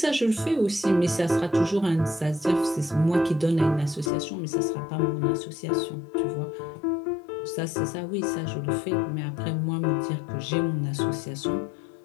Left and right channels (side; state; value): right; drops out; at 4.1 s